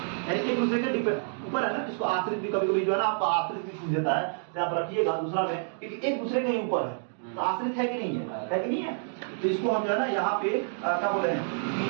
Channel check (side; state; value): left; silent; digital silence